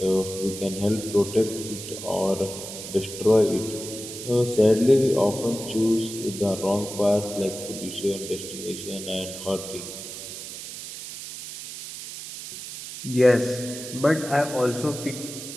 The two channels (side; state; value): right; noise; hiss, 10 dB below the sound